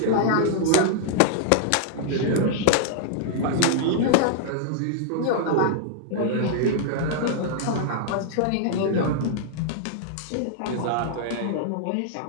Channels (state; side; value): different; both; correlation -0.01